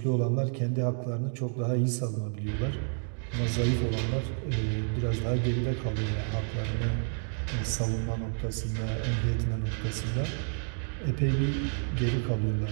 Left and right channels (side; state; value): left; silent; 58 dB below the other